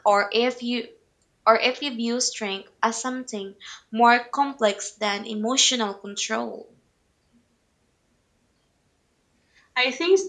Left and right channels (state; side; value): identical; both; correlation 1.00